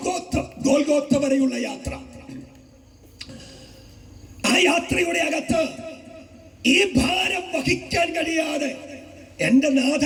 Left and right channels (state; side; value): identical; both; correlation 1.00